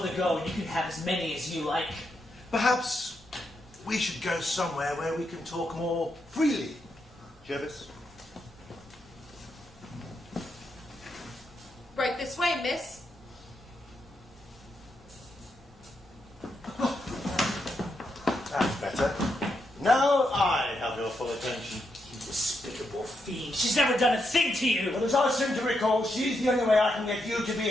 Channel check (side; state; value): both; normal; correlation 0.82